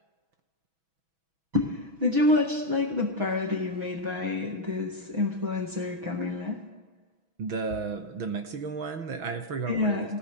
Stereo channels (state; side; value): late; left; 6.2 ms